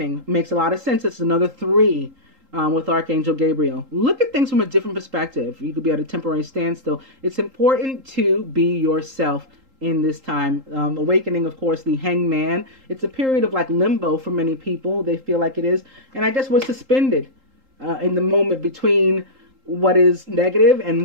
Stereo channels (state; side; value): late; left; 3.8 ms